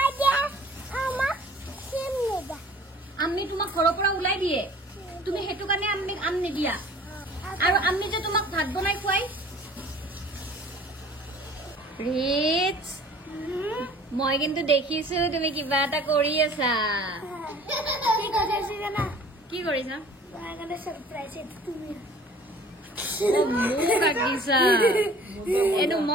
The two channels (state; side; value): normal; both; correlation 0.49